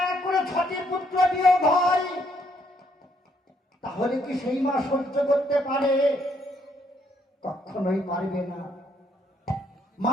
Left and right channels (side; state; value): both; normal; correlation 0.70